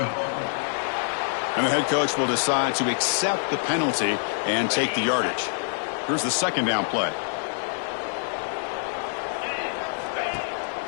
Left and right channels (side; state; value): right; silent; digital silence